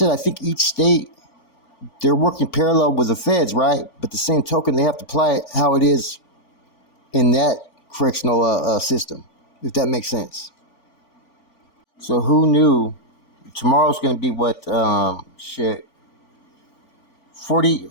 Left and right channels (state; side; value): late; right; 4.4 ms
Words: I think each state, they're working parallel with the feds, right? But the same token, they have to apply it how it is in that correctional system, if that makes sense. So who knew tomorrow's going to be